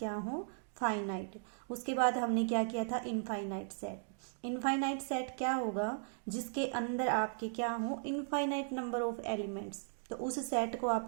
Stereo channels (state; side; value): silent; left; digital silence